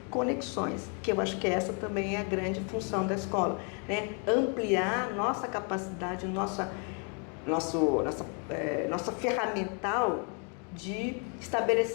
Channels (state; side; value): quieter; right; 38.9 dB